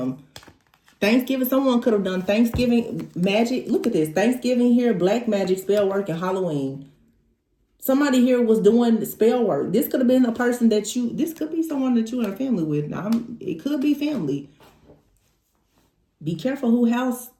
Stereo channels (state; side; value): identical; both; correlation 1.00